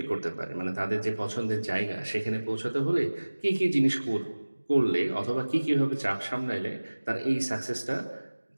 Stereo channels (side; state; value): both; inverted; correlation -1.00